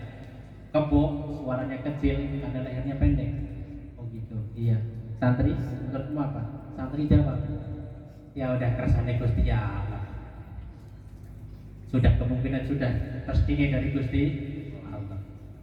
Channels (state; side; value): identical; both; correlation 1.00